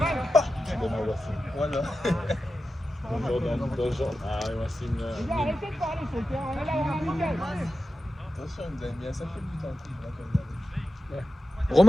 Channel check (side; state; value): both; normal; correlation 0.92